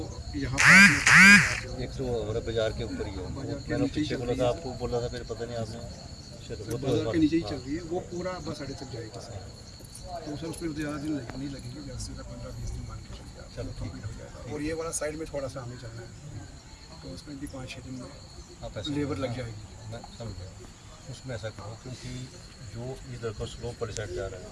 यहाँ पर एक तो हमारे बाजार के ऊपर ही है, मैंने पीछे बोला था, आपको बोला था, फिर पता नहीं आपने, चलो बाजार के नीचे ही चल रही है, वो पूरा बस अड्डे तक जाएगी सर। तो सर उस पर ज़्यादा दिन नहीं लगेंगे, जैसे 15-20 दिन मान के चलिए, चलो कंप्लीट हो जाएगा। और ये वाला साइड में थोड़ा सा हमें चलना है, तो उसमें भी 5-6 दिन में आप ऐसा लेबर लग जाएगी। मैं समझ गया। उसमें ऐसा करो, क्योंकि जो इधर का स्लोप पर साइड जा रहा है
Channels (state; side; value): identical; both; correlation 1.00